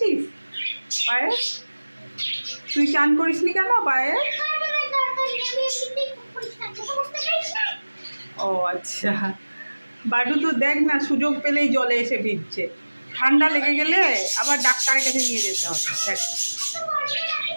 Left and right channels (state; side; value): inverted; both; correlation -1.00